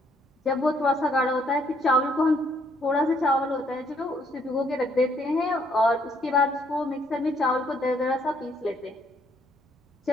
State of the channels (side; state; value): both; normal; correlation 0.68